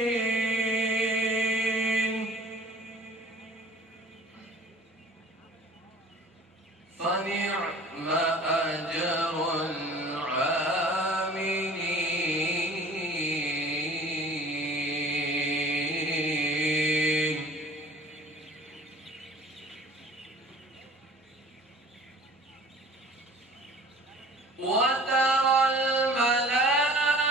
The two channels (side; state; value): both; normal; correlation 0.47